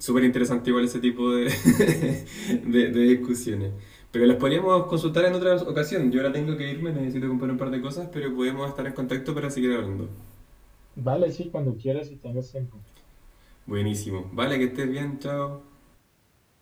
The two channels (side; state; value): both; identical; correlation 1.00